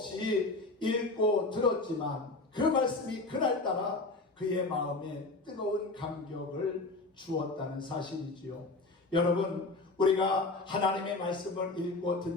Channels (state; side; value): quieter; right; 3.2 dB